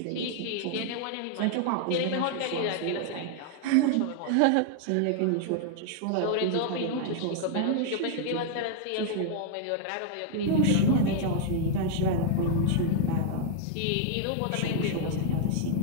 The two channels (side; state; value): both; different; correlation 0.00